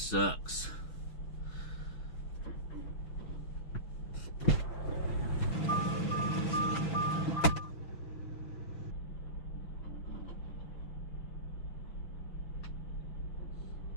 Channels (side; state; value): right; late; 6.2 ms